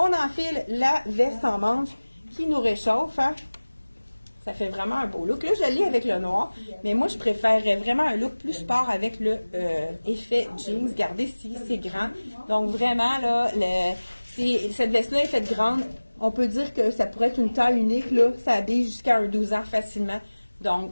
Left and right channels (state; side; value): inverted; both; correlation -1.00